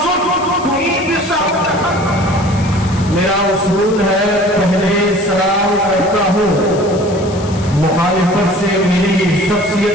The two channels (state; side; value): noise; left; hiss, 17 dB below the sound